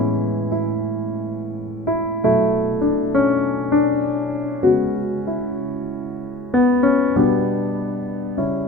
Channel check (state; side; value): normal; both; correlation 0.45